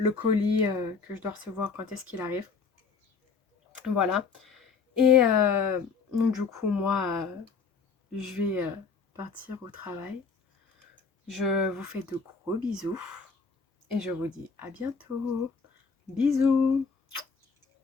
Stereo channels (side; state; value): right; quieter; 5.2 dB